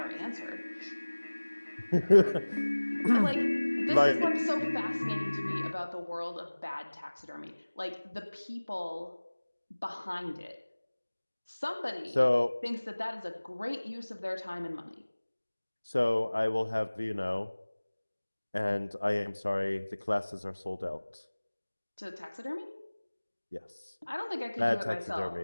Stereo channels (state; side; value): inverted; both; correlation -1.00